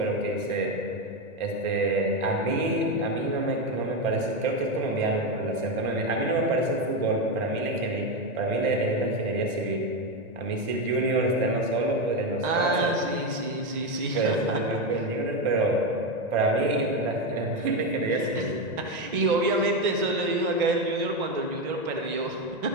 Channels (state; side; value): late; left; 1.9 ms